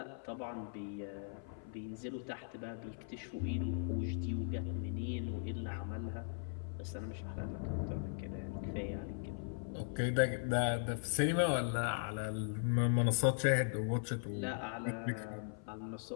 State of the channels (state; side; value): silent; right; 52 dB below the other